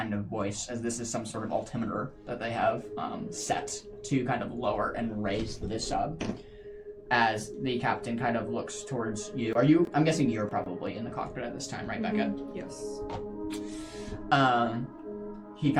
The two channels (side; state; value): both; identical; correlation 1.00